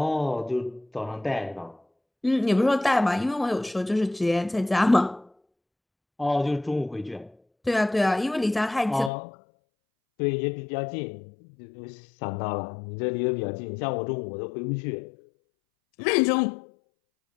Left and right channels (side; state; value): right; drops out; at 9.1 s